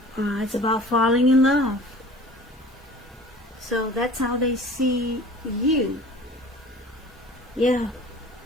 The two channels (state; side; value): normal; both; correlation 0.44